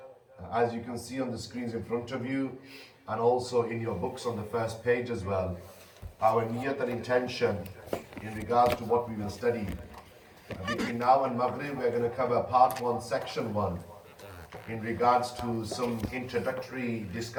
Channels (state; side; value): identical; both; correlation 1.00